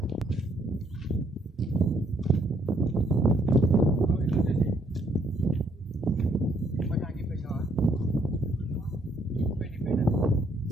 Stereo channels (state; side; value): normal; both; correlation 0.69